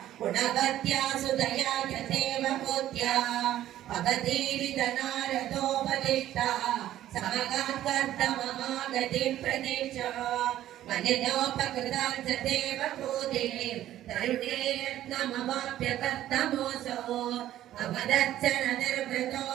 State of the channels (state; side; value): quieter; left; 13.0 dB